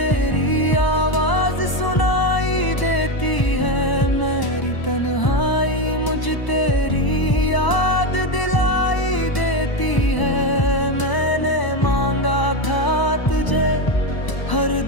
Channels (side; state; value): right; late; 1.0 ms